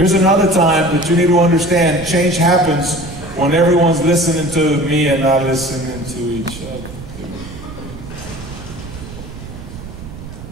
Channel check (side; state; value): right; noise; rumble, 13 dB below the sound